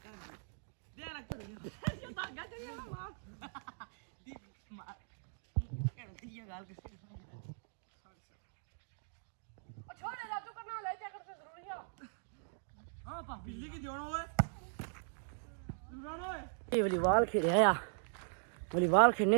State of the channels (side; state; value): left; silent; digital silence